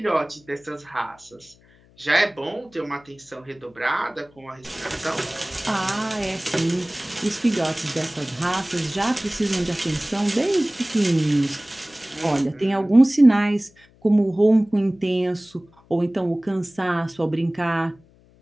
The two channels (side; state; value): left; noise; hum, 29 dB below the sound